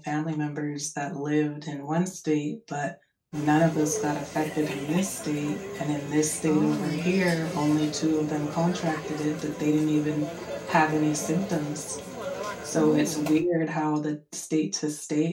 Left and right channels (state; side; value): identical; both; correlation 1.00